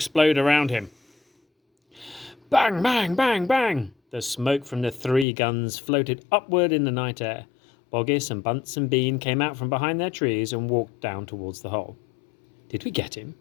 around him. Bang, bang, bang, bang! The smoke from the 3 guns floated upward in the night air. Boggis and Bunce and Bean came out from behind their trees and walked down towards the hole. "Did we get him?"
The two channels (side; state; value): right; drops out; at 5.2 s